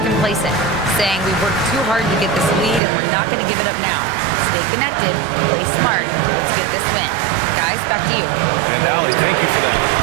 complacent, saying we worked too hard to get this lead and we're not going to give it up now. Stay connected, play smart, let's get this win. Guys, back to you. And Allie, thank you for that.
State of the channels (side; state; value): left; drops out; at 2.8 s